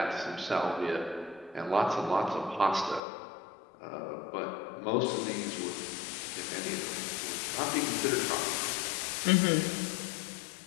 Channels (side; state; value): right; drops out; at 3.0 s